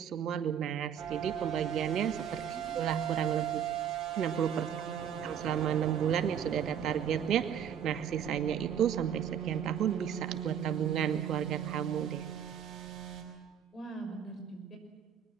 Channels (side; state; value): left; quieter; 8.7 dB